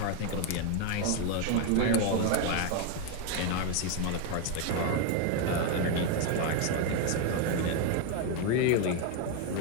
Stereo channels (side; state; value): both; different; correlation 0.01